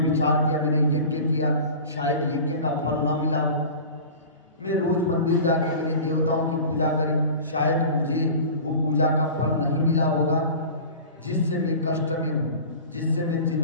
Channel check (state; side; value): inverted; both; correlation -0.37